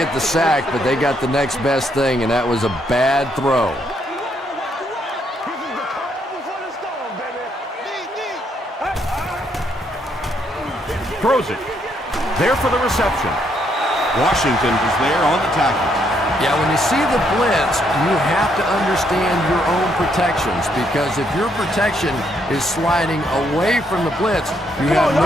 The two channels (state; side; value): normal; both; correlation 0.73